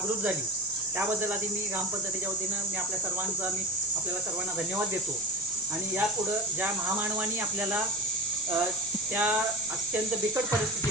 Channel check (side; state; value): both; normal; correlation 0.26